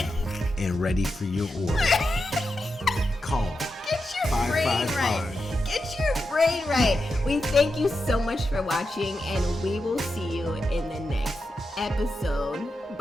and ready for your order. Call. Get your brain right. Get your brain right. We thank you so much for watching, and we will see you in the next episode.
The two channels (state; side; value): normal; both; correlation 0.88